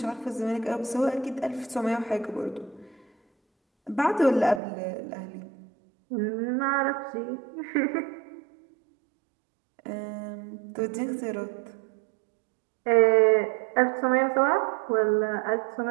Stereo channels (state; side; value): drops out; left; at 4.6 s